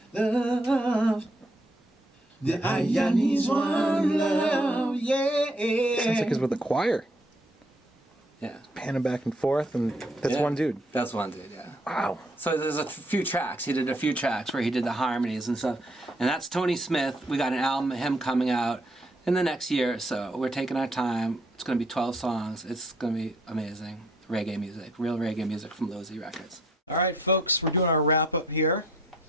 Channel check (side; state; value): both; normal; correlation 0.68